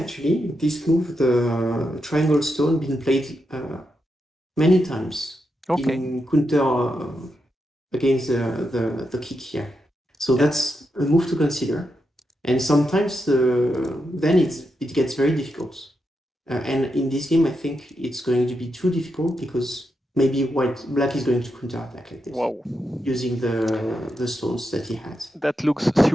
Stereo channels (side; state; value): both; normal; correlation 0.85